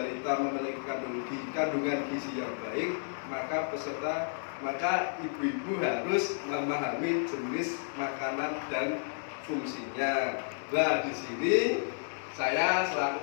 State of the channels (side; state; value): right; silent; 56 dB below the other